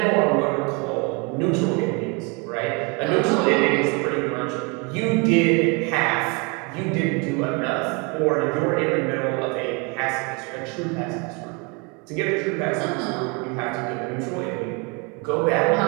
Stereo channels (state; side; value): quieter; left; 30.9 dB